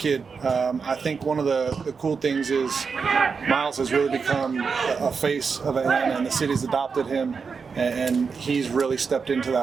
I think one of the cool things is Miles has really become a face of Atlanta, and the city's adopted him, and he's really stepped into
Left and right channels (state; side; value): quieter; left; 5.4 dB